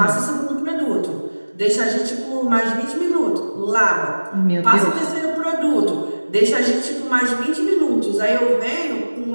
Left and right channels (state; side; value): inverted; both; correlation -1.00